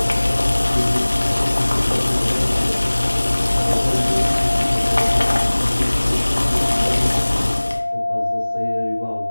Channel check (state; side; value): inverted; both; correlation -1.00